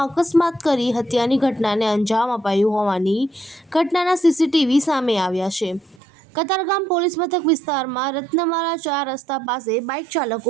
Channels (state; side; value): drops out; left; at 6.0 s